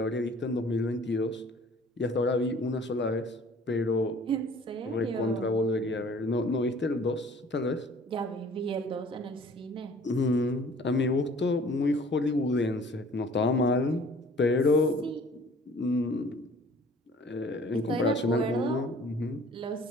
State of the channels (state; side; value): normal; both; correlation 0.52